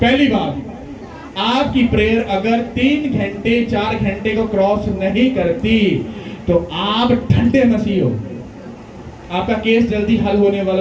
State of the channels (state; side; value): identical; both; correlation 1.00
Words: बात, आपकी प्रेयर अगर 3 घंटे 4 घंटे को क्रॉस नहीं करती तो आप ठंडे मसीह हो, आपका केस जल्दी हल होने